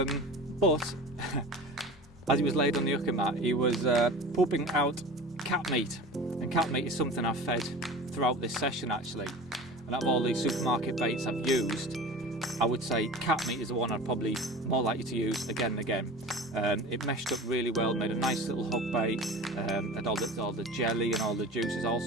as he was laid on the Inuka mat, he was pooping out cat meat. And cat meat is something I've fed throughout this session actually. And out of all these supermarket baits I've used, I would say cat meat is the one I'd probably more likely to use again and again. It meshed up really well, made a nice little hook bait, and all the jelly and all the juices all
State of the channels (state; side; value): normal; both; correlation 0.36